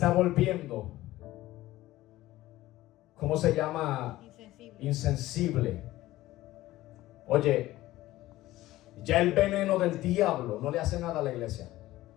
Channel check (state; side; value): quieter; right; 16.4 dB